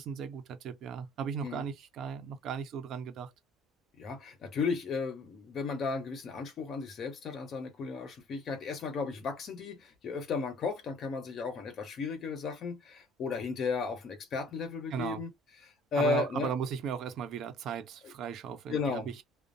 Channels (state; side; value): normal; both; correlation 0.54